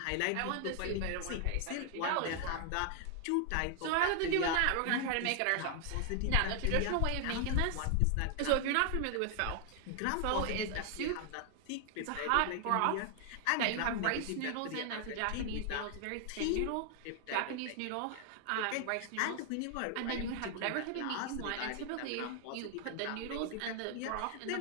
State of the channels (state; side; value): different; both; correlation 0.00